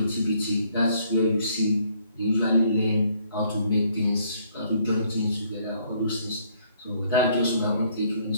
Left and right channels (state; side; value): inverted; both; correlation -0.65